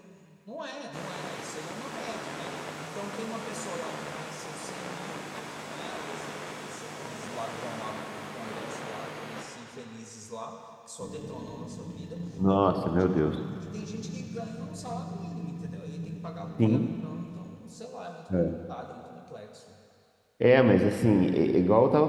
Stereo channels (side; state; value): both; identical; correlation 1.00